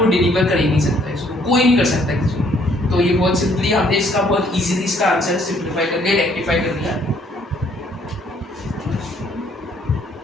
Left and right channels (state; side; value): normal; both; correlation 0.64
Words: डिलीवर कर ही नहीं सकता, इसको कोई नहीं कर सकता किसी को। तो ये बहुत सिंपली हमने इसका बहुत इजीली इसका आंसर सिंप्लीफाई कर दिया, रेक्टिफाई कर दिया।